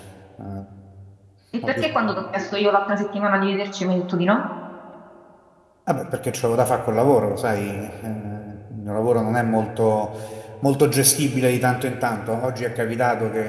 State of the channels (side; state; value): both; identical; correlation 1.00